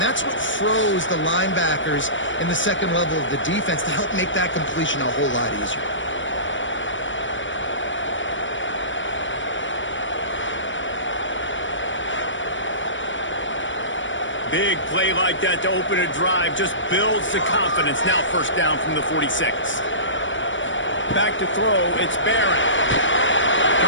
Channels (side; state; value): right; late; 0.56 ms